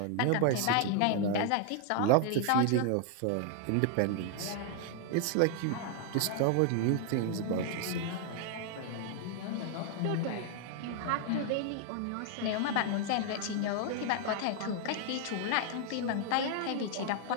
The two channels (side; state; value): both; different; correlation 0.00